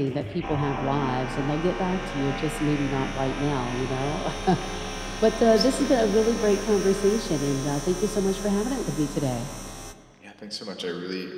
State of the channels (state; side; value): identical; both; correlation 1.00